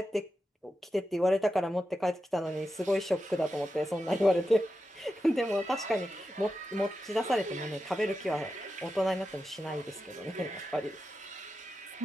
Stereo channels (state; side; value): normal; both; correlation 0.90